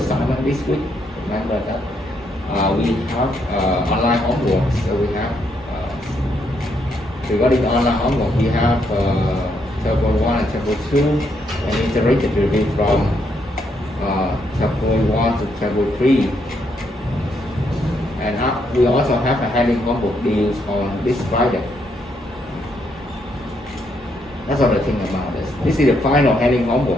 this week. Remember that we have online homework. So we have regarding online homework, we have chapter 1 and chapter 2, and iterated review from chapter 1 to chapter 3. And we also have a handling homework deals on this Friday. That's all the thing about this. This is the final handling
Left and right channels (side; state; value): both; normal; correlation 0.75